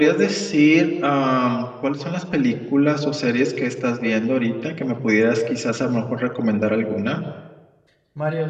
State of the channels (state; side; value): identical; both; correlation 1.00